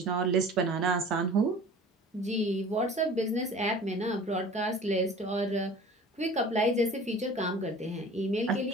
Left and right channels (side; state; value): both; normal; correlation 0.44